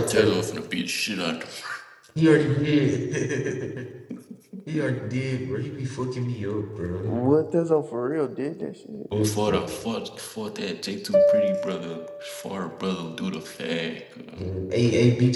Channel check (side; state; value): both; identical; correlation 1.00